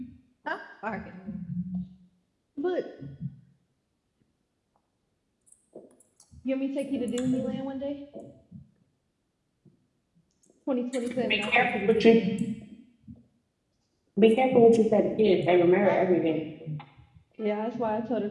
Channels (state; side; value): identical; both; correlation 1.00